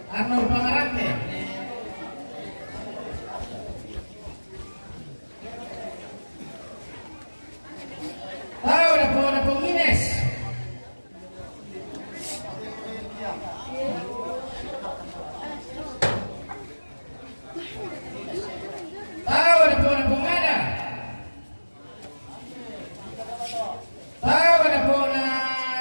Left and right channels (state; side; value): inverted; both; correlation -1.00